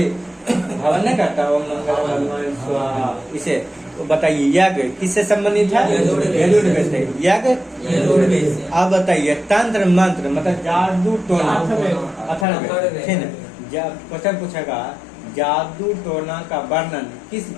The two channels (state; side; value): drops out; right; at 12.5 s